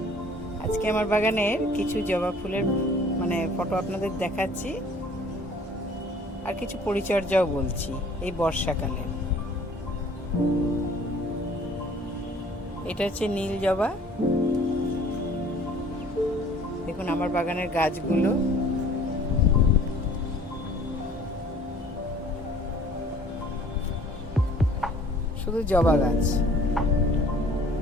আজকে আমার বাগানের কিছু জবা ফুলের ফটো আপনাদের দেখাচ্ছি, আর কিছু পরিচর্যাও বলছি এই বর্ষাকালে। এটা হচ্ছে নীল জবা। দেখুন আমার বাগানের গাছগুলো, শুধু জবা গাছ।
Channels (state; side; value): normal; both; correlation 0.53